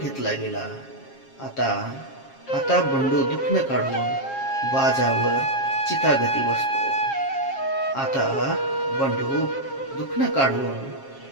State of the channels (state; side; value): late; right; 7.4 ms